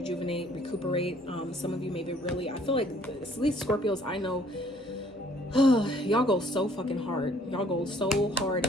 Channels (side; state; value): both; normal; correlation 0.60